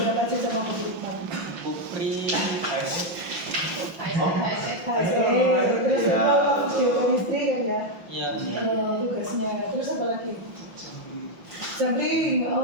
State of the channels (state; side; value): late; left; 5.9 ms